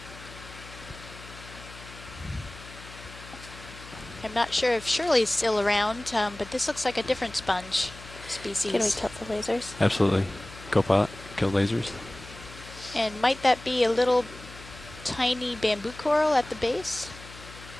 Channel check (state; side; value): noise; left; hum, 17 dB below the sound